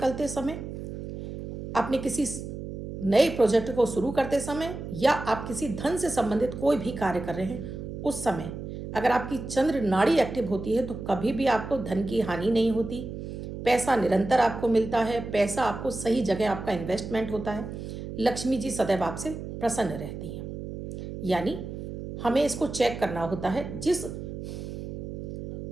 समय, अपने किसी नए प्रोजेक्ट को शुरू करते समय, या आप किसी धन से संबंधित कोई भी कार्य कर रहे हैं, उस समय अगर आपकी चंद्र नाड़ी एक्टिव होती है तो कभी भी आपको धन की हानि नहीं होती। पैसा निरंतर आपको मिलता है, पैसा आपको सही जगह आपका इन्वेस्टमेंट होता है, लक्ष्मी जी सदैव आपसे प्रसन्न रहती हैं। यानी हमें इसको चेक करना होता है। जिस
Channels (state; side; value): noise; right; hum, 8 dB below the sound